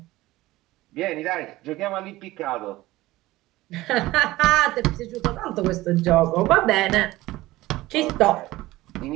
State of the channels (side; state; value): left; quieter; 17.9 dB